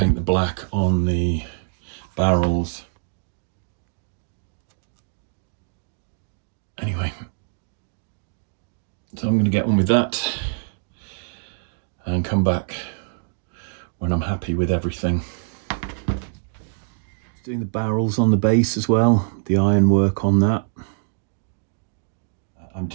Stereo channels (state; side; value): silent; left; digital silence